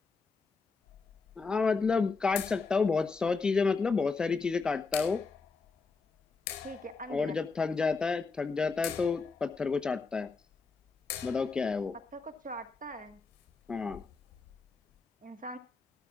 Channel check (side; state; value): right; quieter; 4.4 dB